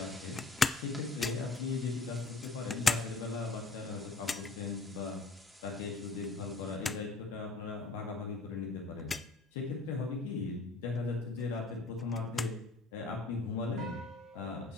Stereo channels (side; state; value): right; quieter; 3.6 dB